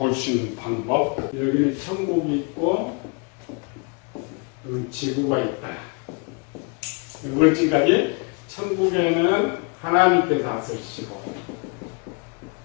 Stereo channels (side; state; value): right; quieter; 33.8 dB